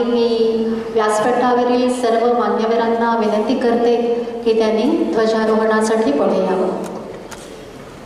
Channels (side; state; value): both; identical; correlation 1.00